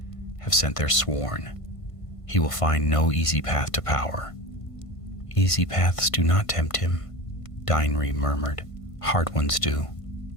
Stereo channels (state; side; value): late; right; 1.5 ms